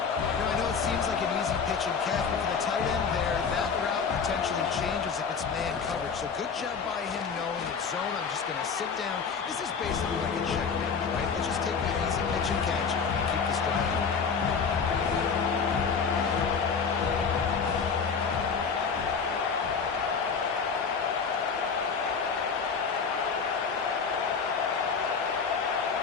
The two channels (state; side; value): quieter; right; 5.8 dB